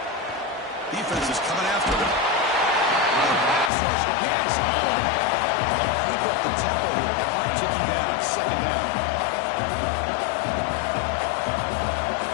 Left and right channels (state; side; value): drops out; right; at 3.7 s